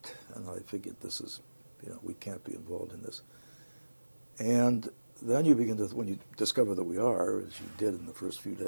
and I figured this is, we can't be involved in this. And then you begin to, when you discover that we are, as you did in the first few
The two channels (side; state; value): both; inverted; correlation -1.00